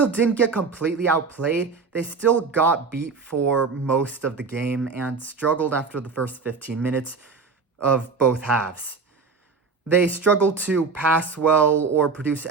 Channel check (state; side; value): quieter; left; 4.7 dB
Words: didn't get completely outplayed, they still got beat for most of the game and struggled after the first 15 minutes of both halves. They struggled to pass well or produce